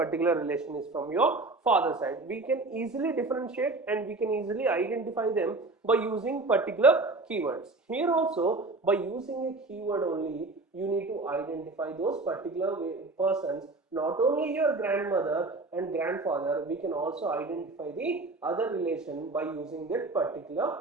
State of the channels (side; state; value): left; quieter; 3.3 dB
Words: relation is from your father side. We can easily differentiate and we can easily identify them by using particular keywords. Here also, by using a keyword only, you need to identify those particular persons. Not only your grandmother and grandfather, we can also identify the other relation by using that particular